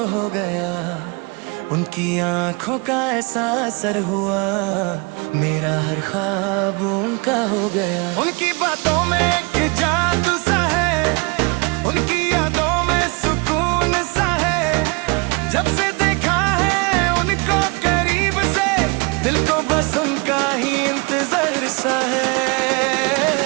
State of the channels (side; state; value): left; quieter; 30.2 dB